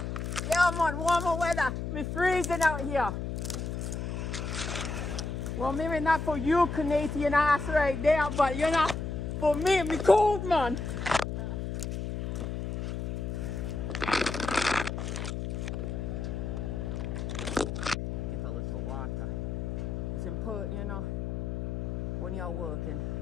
Yeah, man, warmer weather. We're freezing out here. Well, maybe not for you, Canadian ass right there, but you know, for me, me cold, man. Get a little water. It's important, you know, when you're working,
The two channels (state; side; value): noise; left; hum, 3 dB below the sound